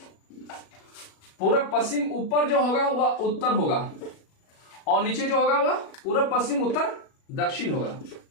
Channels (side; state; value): right; late; 37 ms